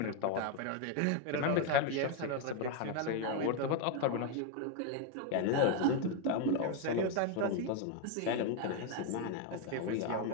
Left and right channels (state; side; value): different; both; correlation 0.01